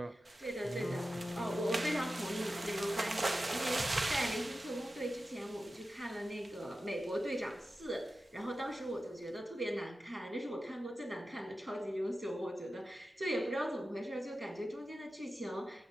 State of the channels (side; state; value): both; normal; correlation 0.93